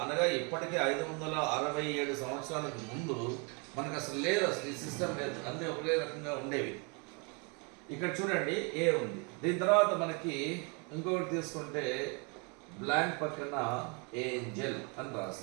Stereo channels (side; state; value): left; quieter; 33.6 dB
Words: అనగా ఇప్పటికీ 567 సంవత్సరాలకు ముందు మనకు అసలు లేదు, అసలు ఈ సిస్టమ్ లేదు. అన్నీ ఒకే రకంగా ఉండేవి. ఇక్కడ చూడండి ఏ ఉంది. దీని తర్వాత మనకి ఇంకొకటి తీసుకుంటే బ్లాంక్ పక్కన ఏంజెల్ అని